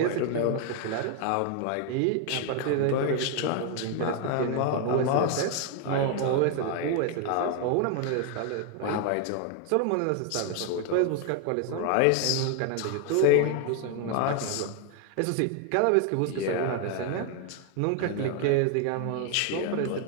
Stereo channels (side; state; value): both; different; correlation 0.00